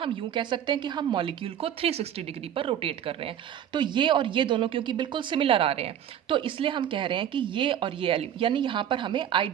यूं कह सकते हैं कि हम मॉलिक्यूल को 360 डिग्री पर रोटेट कर रहे हैं। तो ये और ये दोनों क्योंकि बिल्कुल सिमिलर आ रहे हैं तो इसलिए हम कह रहे हैं कि ये और ये यानी यहाँ पर हमें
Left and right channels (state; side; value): quieter; left; 10.0 dB